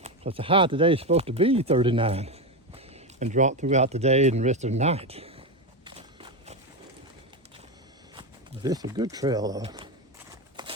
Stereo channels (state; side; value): normal; both; correlation 0.13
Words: because the high today is supposed to be 39 and drop throughout the day and the rest of the night. This is a good trail though.